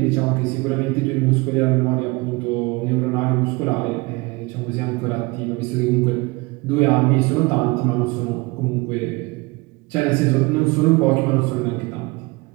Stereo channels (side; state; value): left; quieter; 25.2 dB